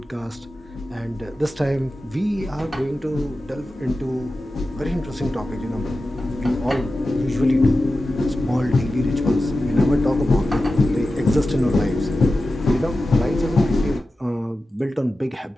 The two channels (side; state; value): both; normal; correlation 0.93